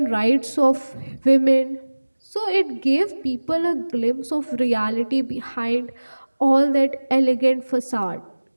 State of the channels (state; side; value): inverted; both; correlation -1.00